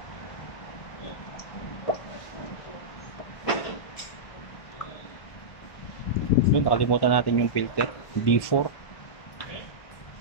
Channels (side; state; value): right; late; 1.2 ms